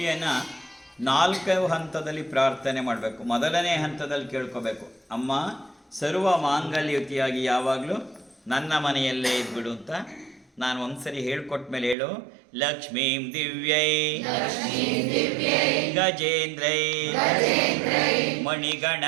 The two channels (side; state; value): left; drops out; at 12.0 s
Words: 4 ಹಂತದಲ್ಲಿ ಪ್ರಾರ್ಥನೆ ಮಾಡಬೇಕು. ಮೊದಲನೇ ಹಂತದಲ್ಲಿ ಕೇಳ್ಕೋಬೇಕು, ಅಮ್ಮ ಸರ್ವ ಮಾಂಗಲ್ಯಯುತಿಯಾಗಿ ಯಾವಾಗಲೂ ನನ್ನ ಮನೆಯಲ್ಲೇ ಇದ್ಬಿಡು ಅಂತ. ನಾನು ಒಂದ್ಸರಿ ಹೇಳ್ಕೊಟ್ಟ ಮೇಲೆ ಹೇಳು. ಲಕ್ಷ್ಮೀಂ ದಿವ್ಯೈ ಗಜೇಂದ್ರೈ ಮಣಿಗಣ